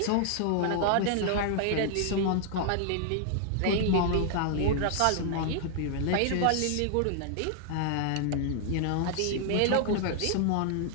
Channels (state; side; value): different; both; correlation 0.00